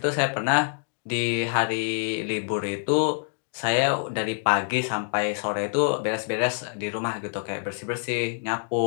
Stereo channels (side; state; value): right; silent; digital silence